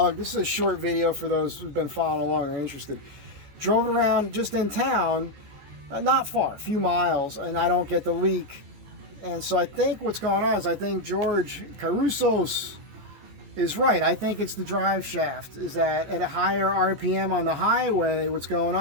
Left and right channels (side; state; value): left; late; 14 ms